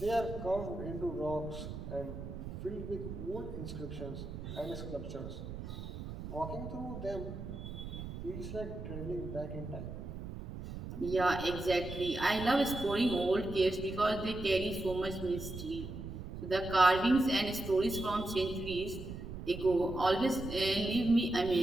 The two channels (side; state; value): right; noise; rumble, 9 dB below the sound